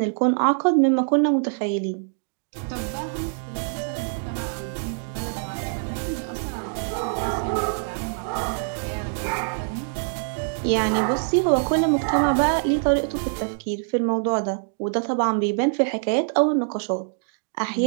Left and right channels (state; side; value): silent; left; digital silence